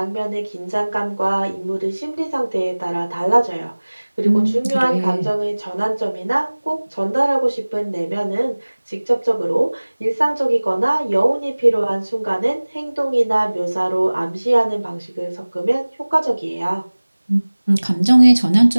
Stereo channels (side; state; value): both; inverted; correlation -1.00